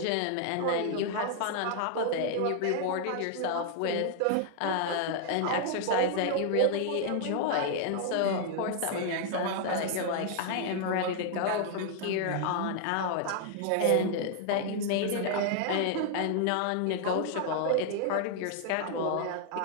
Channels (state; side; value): different; both; correlation 0.00